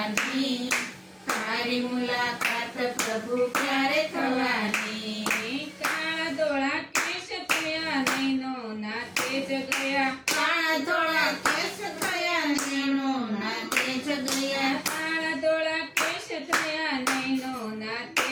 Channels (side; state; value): both; identical; correlation 1.00